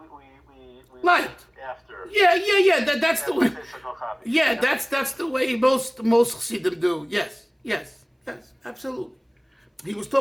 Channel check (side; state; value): both; identical; correlation 1.00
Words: Light. after. Yeah. That's the way. Physical copy. Yeah, that's the way most Chassidim do. Yes, absolutely. He was